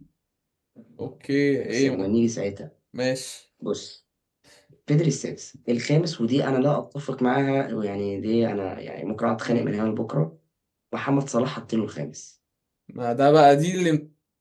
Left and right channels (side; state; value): both; identical; correlation 1.00